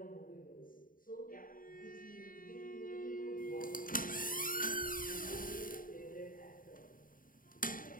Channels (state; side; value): late; right; 0.40 ms